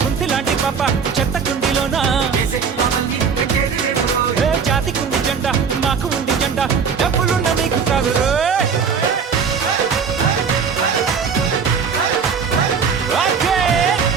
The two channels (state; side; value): quieter; left; 6.2 dB